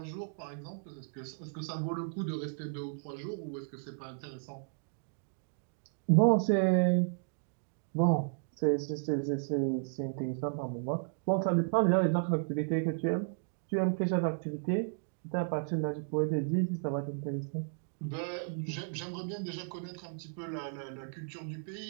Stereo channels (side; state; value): left; silent; digital silence